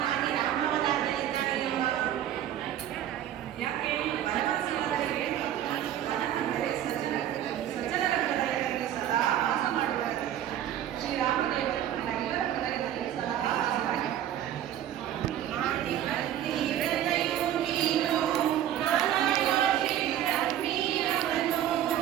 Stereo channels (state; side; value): quieter; left; 11.3 dB